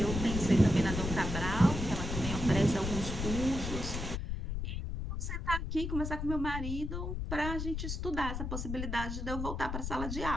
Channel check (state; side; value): noise; left; rumble, 4 dB below the sound